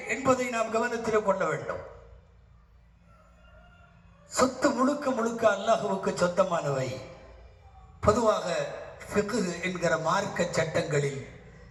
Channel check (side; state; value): both; identical; correlation 1.00